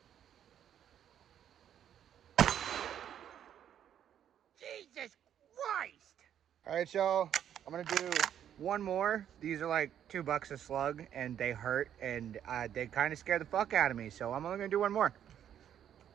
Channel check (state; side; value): quieter; left; 9.8 dB